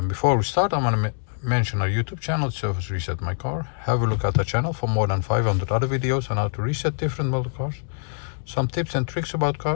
Before we start, I'm going to mention our YouTube channel, Service Reset My Car. Have a look at the channel for more than 500 other videos on how to reset different model cars. Some tips and tricks about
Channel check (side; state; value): right; silent; digital silence